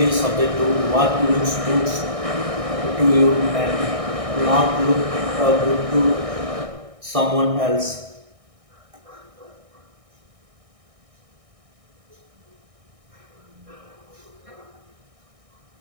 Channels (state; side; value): late; left; 1.6 ms